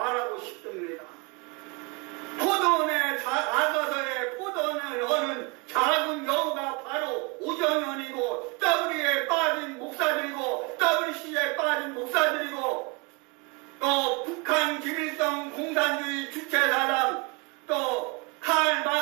싶습니다. 포도원에 아서서의 포도원을 하는 작은 여우가 바로 우정연이고 W에 빠진 목사들이고 WC에 빠진 목사들이고 또 북한 김일성 공산주의 주체사상 또 칼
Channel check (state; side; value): quieter; left; 29.1 dB